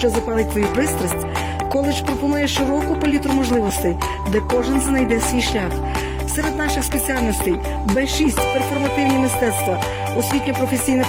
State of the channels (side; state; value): both; identical; correlation 1.00